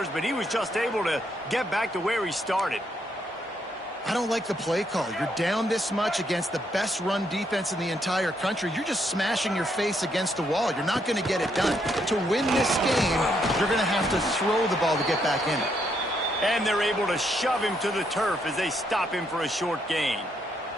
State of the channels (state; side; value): normal; both; correlation 0.75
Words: but he was just able to get back to where he started. I don't like the play call. You're down this much against the best run defense in the entire country. You're just smashing your face against the wall. You're not going to get it done. To win this game, you're going to have to throw the ball to get back in it. And they're able to shove him to the turf as they stop him for a short gain.